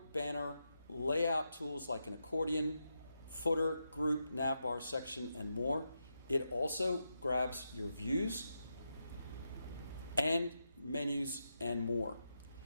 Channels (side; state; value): both; inverted; correlation -0.86